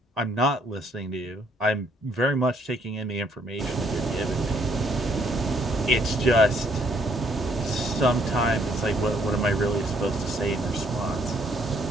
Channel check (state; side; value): normal; both; correlation 0.67